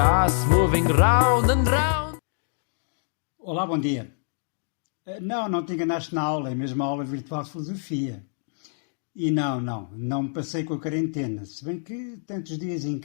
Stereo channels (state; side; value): silent; right; digital silence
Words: moving round and round. Olá, bom dia. Não te enganaste na aula, é mesmo a aula virtual de filosofia. E não me passei com a quarentena, se bem que tantos dias em